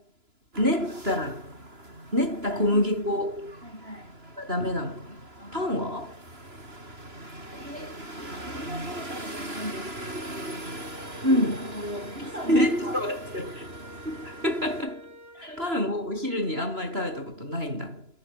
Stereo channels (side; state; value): left; late; 2.9 ms